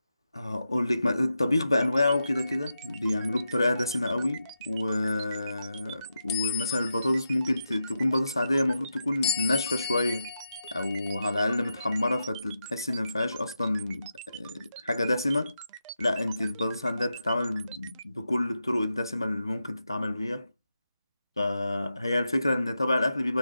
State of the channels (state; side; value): inverted; both; correlation -0.87